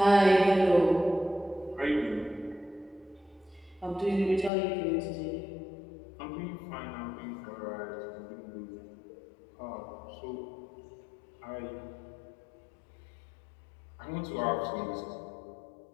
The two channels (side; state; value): right; drops out; at 4.5 s